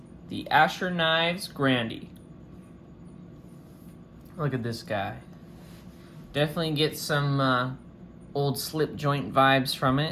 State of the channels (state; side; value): identical; both; correlation 1.00